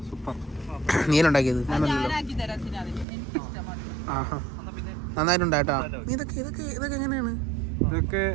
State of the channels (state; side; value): drops out; left; at 3.1 s